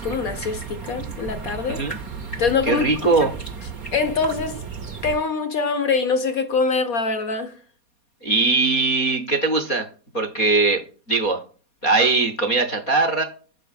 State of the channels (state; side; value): late; right; 4.2 ms